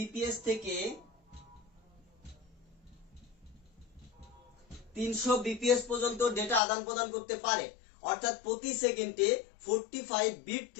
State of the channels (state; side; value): drops out; right; at 6.6 s